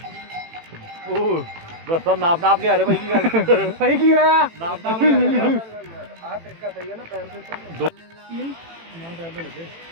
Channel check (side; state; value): left; late; 18 ms